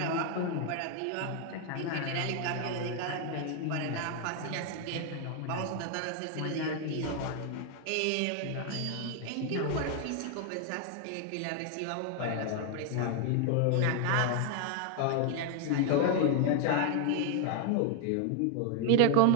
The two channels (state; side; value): different; both; correlation 0.00